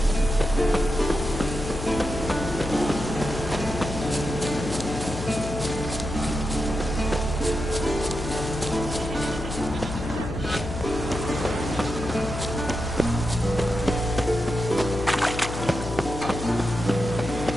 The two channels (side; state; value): left; noise; hum, 7 dB below the sound